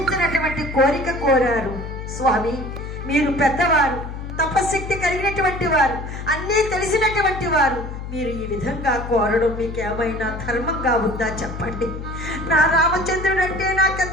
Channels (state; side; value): noise; left; hum, 8 dB below the sound